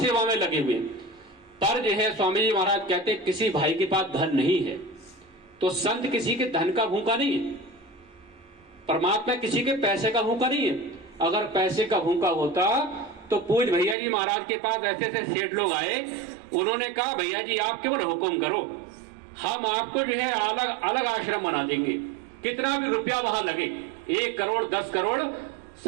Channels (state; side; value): drops out; left; at 14.0 s